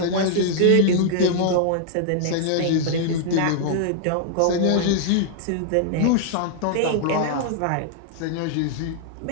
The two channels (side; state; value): both; different; correlation -0.01